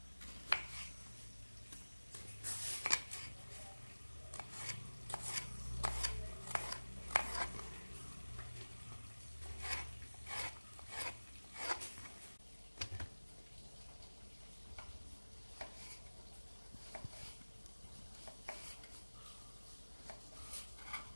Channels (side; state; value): both; inverted; correlation -1.00